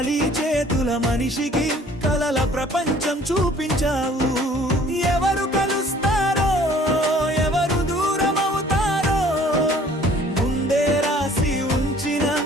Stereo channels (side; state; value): both; normal; correlation 0.54